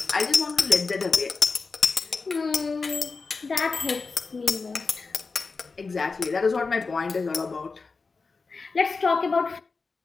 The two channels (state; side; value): quieter; right; 4.3 dB